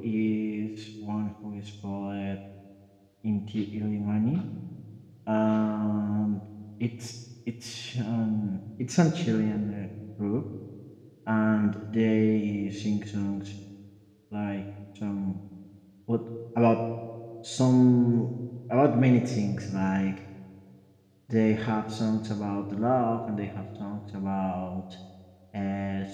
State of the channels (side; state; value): both; identical; correlation 1.00